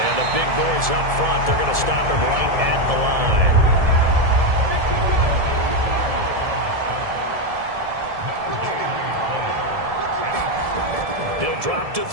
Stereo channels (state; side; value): late; left; 1.7 ms